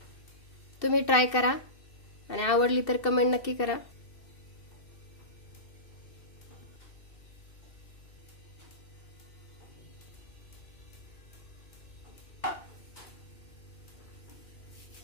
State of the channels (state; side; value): late; right; 2.7 ms